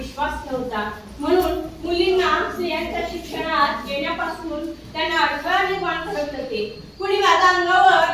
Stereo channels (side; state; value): both; identical; correlation 1.00